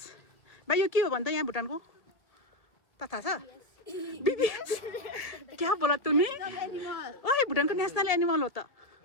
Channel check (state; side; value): late; right; 1.7 ms